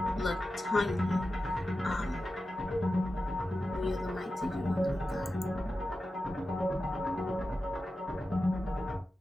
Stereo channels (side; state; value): both; normal; correlation 0.92